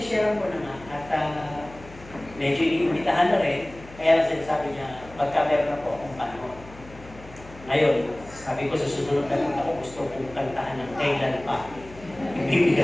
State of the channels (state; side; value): noise; left; hum, 19 dB below the sound